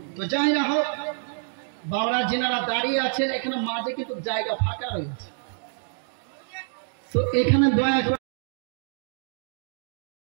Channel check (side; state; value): left; silent; digital silence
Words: তো যাই না হোক, বাবারা যিনারা দাঁড়িয়ে আছেন এখানে মাঝে কিন্তু জায়গা ফাঁকা রয়েছে, তো এখানে দয়া করে